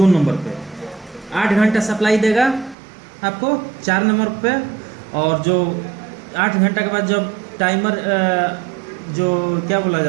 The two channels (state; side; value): drops out; left; at 2.8 s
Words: नंबर पे 8 घंटा सप्लाई देगा आपको 4 नंबर पे। और जो 8 घंटा के बाद जब टाइमर जो क्या बोला